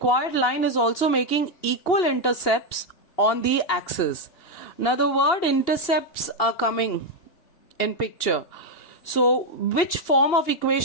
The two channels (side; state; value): right; late; 2.8 ms